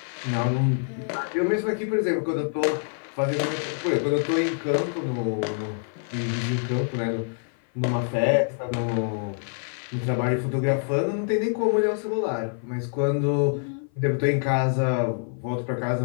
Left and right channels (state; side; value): silent; right; 57 dB below the other